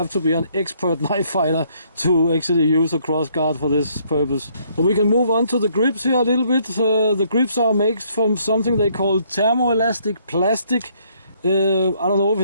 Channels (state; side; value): inverted; both; correlation -0.67